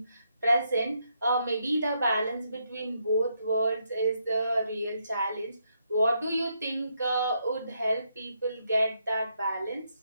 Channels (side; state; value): both; inverted; correlation -0.78